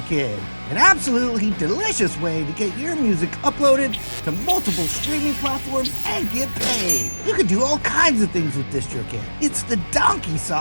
An absolutely delicious way to get your music uploaded to multiple streaming platforms and get paid. You can do all kinds of things with Distrokid. It's the donkey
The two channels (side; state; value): both; inverted; correlation -1.00